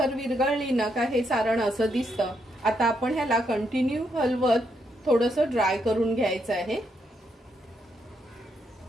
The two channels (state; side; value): normal; both; correlation 0.78